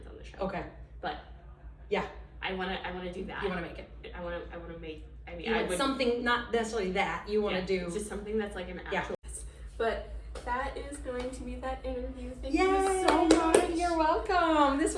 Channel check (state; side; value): identical; both; correlation 1.00